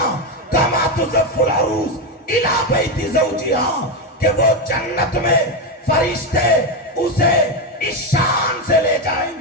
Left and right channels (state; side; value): normal; both; correlation 0.10